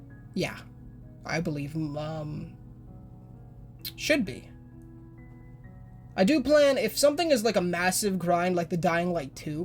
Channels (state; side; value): identical; both; correlation 1.00